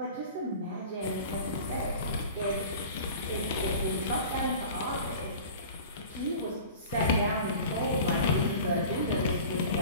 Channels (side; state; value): both; inverted; correlation -0.40